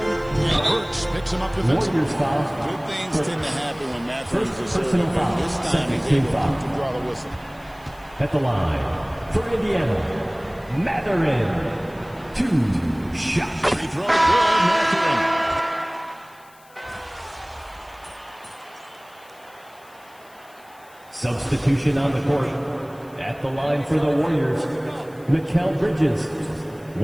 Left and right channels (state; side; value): noise; left; hiss, 27 dB below the sound